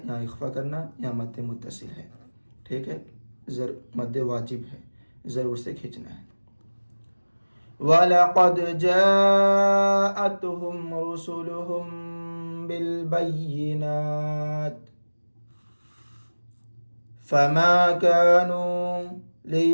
इख्फा करना, यहाँ मद्दे मुत्तसिल है, ठीक है। मद्दे वाजिब है, ज़रूर से खींचना है। वलक़द जाअतहुम रुसुलुहुम बिलबय्यिनात फमा कानू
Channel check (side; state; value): both; inverted; correlation -1.00